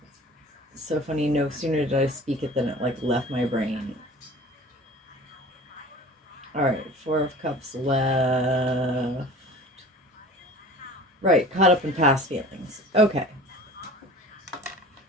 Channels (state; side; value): normal; both; correlation 0.41